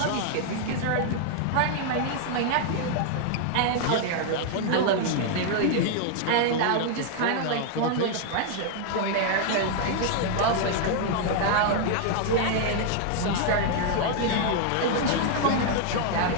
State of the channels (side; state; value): both; different; correlation 0.00